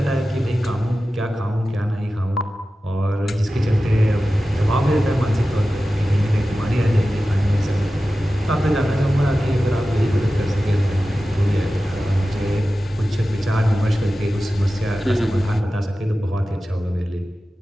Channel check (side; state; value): both; normal; correlation 0.94